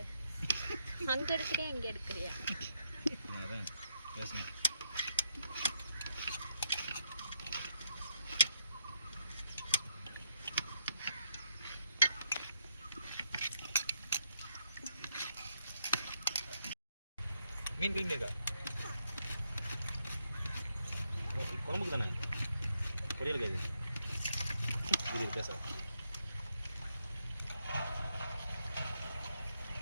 அங்க எடுக்கறியா இங்க எடுக்கறியா? அதான் பேசணும். மீன் கிளீன் இருக்கா? குழம்புக்கு தானே, பொரியல் கேது இது பேச.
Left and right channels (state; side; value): inverted; both; correlation -0.77